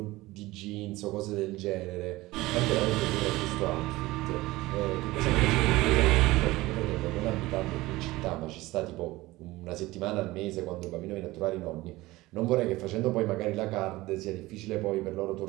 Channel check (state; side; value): quieter; left; 19.2 dB